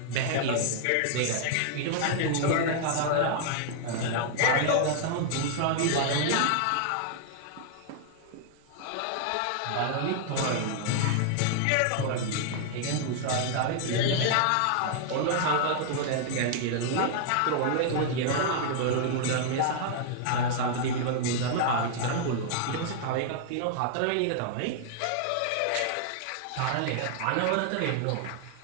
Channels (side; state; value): both; different; correlation -0.01